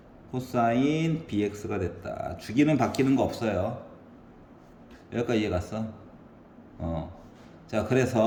코사인 bx가 됐다. 주기는 바뀌는 거 없어요. 여기까지 이해 갔어? 자,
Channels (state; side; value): identical; both; correlation 1.00